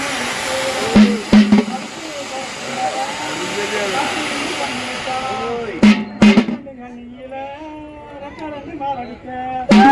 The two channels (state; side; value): identical; both; correlation 1.00